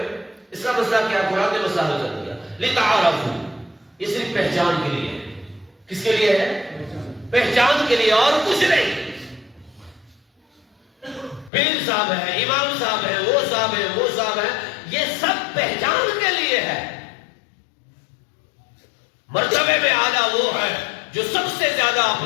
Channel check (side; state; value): right; drops out; at 11.5 s